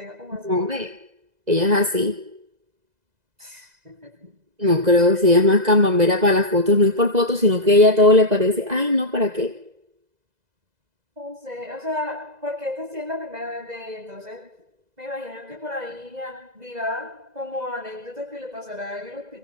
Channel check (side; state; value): left; late; 2.0 ms